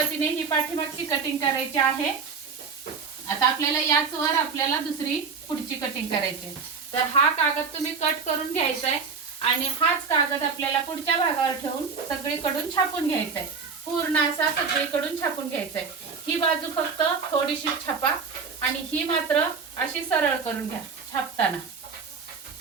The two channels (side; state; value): left; quieter; 5.4 dB